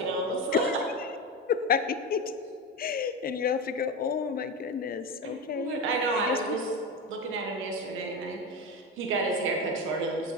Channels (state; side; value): normal; both; correlation 0.19